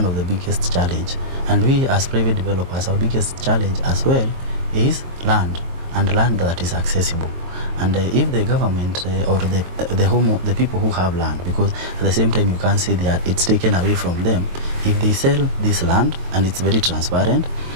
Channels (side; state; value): left; late; 22 ms